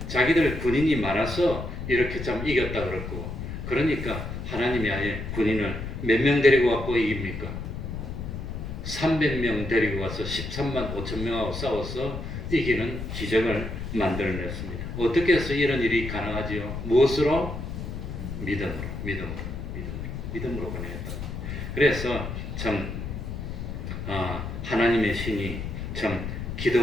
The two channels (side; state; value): left; noise; rumble, 6 dB below the sound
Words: 자기들 군인이 많아서 이렇게 참 이겼다 그럴 거고 그러니까 하나님이 아예 군인을 몇 명 데리고 갖고 이깁니까? 300명 데리고 가서 13만 5천 명하고 싸워서 이기는 기적을 만들어냈습니다. 어떻게 해서 이런 일이 가능하지요? 무엇으로? 믿음으로 가능했다. 그래서 참 하나님의 신이 참